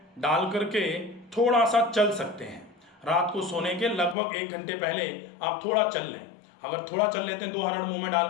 डाल करके थोड़ा सा चल सकते हैं। रात को सोने के लगभग 1 घंटे पहले आप थोड़ा चल लें। अगर थोड़ा चल लेते हैं, 2 हरड़ मुंह में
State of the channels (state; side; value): drops out; right; at 4.2 s